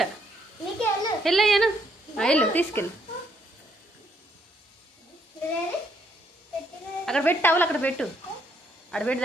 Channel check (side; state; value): both; normal; correlation 0.71